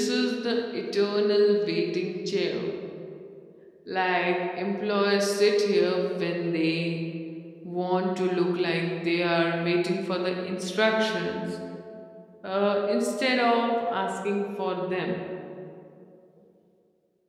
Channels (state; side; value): identical; both; correlation 1.00